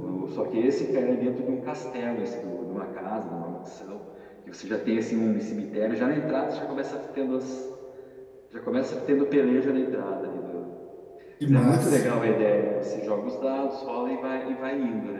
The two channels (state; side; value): identical; both; correlation 1.00